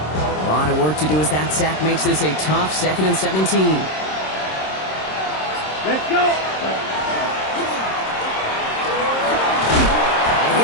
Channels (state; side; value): late; right; 26 ms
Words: Work to do as that sack makes this a tough 2nd and 17. Let's go. And